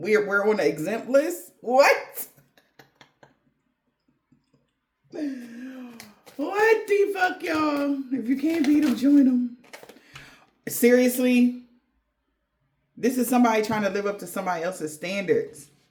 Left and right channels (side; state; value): both; identical; correlation 1.00